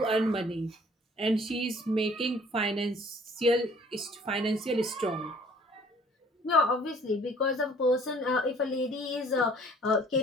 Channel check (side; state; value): both; normal; correlation 0.55